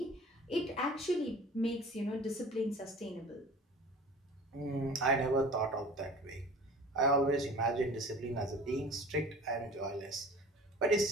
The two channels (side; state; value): both; normal; correlation 0.42